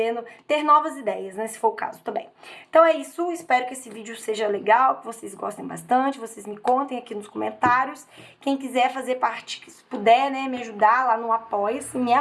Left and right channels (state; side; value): identical; both; correlation 1.00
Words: ter novas ideias, né, se for o caso também. Então é isso, espero que esse vídeo seja legal, que vocês gostem bastante, vocês me contem aqui nos comentários. Quem quiser fazer parte, se puder, né, me ajudar lá no Apoia-se, me